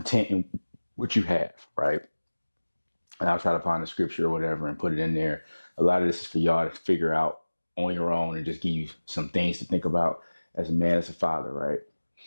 in what you have, right? And I'll try to find the scripture or whatever and put it in there. A lot of this is for y'all to figure out on your own and just give you some things to think about as a man, as a father, right?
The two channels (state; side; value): inverted; both; correlation -1.00